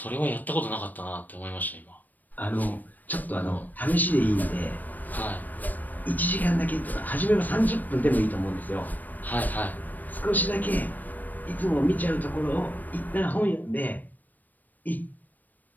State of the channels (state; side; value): late; right; 0.086 ms